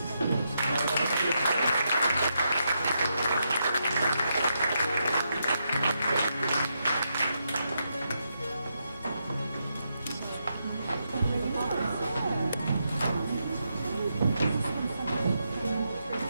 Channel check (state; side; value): inverted; both; correlation -0.82